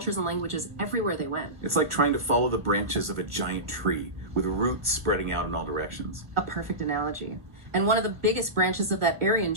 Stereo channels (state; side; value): late; left; 1.5 ms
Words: and languages everywhere they went. It's like trying to follow the branches of a giant tree, with roots spreading out in all directions. A perfect analogy. And one of the biggest branches of that Aryan